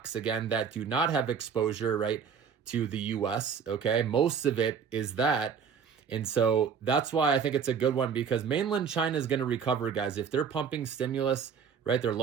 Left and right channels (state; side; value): quieter; left; 6.7 dB